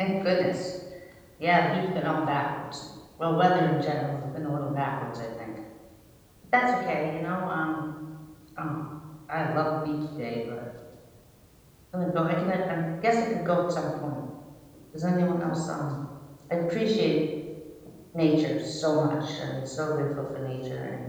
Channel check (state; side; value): identical; both; correlation 1.00